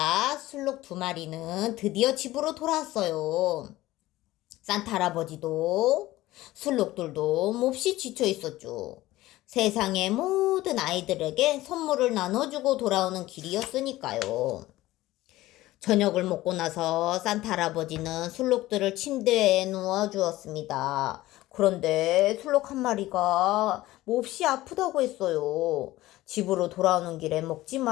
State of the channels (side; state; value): right; quieter; 16.9 dB